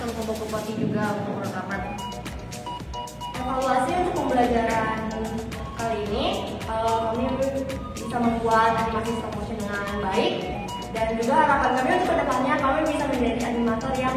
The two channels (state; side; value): identical; both; correlation 1.00